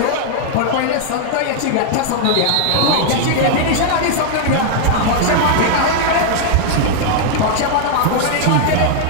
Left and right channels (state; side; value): different; both; correlation 0.00